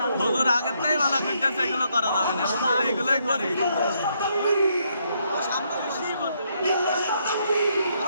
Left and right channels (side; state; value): both; inverted; correlation -0.75